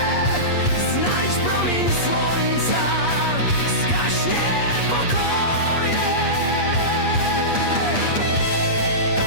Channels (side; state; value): right; late; 8.4 ms